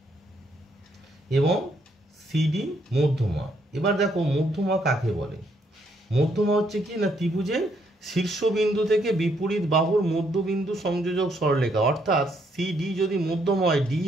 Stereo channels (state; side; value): normal; both; correlation 0.72